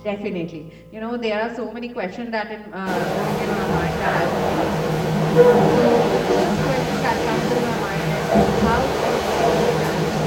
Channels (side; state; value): both; identical; correlation 1.00